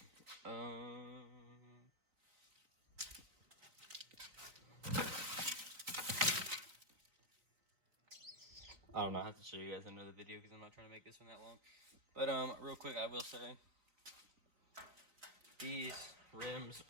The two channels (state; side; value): late; left; 3.9 ms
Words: I don't know. I have to show you guys another video because I'm not trying to make this one that long. But real quick, I will say these rims